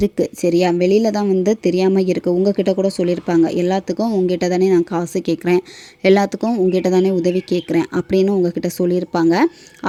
சரியா? வெளியில் தான் வந்து தெரியாமல் இருக்குது. உங்ககிட்ட கூட சொல்லியிருப்பாங்க, எல்லாத்துக்கும் உங்ககிட்ட தானே நான் காசு கேட்குறேன், எல்லாத்துக்கும் உங்ககிட்ட தானே உதவி கேட்குறேன் அப்படின்னு உங்ககிட்ட சொல்லியிருப்பாங்க.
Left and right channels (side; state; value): both; identical; correlation 1.00